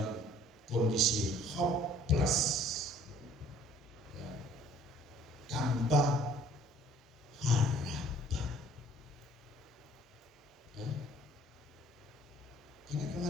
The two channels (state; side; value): normal; both; correlation 0.56